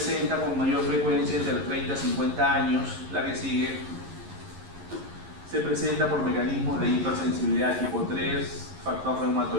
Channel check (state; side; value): late; left; 11 ms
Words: con mayor frecuencia entre los 30 y 50 años. La que sigue se presenta por mecanismos de hipersensibilidad tipo 3, factor